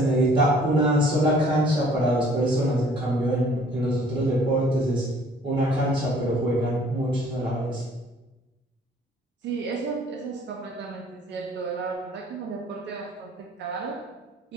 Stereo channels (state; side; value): normal; both; correlation 0.56